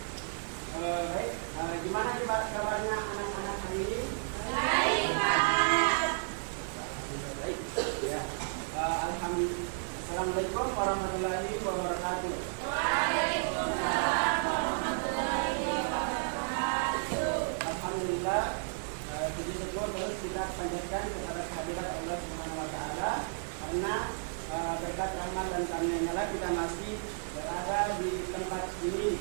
Baik, gimana nih Pak kabarnya anak-anak hari ini? Baik, Pak. Baik, ya. Alhamdulillah. Assalamualaikum warahmatullahi wabarakatuh. Waalaikumsalam warahmatullahi wabarakatuh. Alhamdulillah, puji syukur terus kita panjatkan kepada kehadirat Allah Subhanahu Wa Taala karena berkat rahmat dan karunia Allah kita masih berada di tempat ini, di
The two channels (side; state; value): left; silent; 56 dB below the other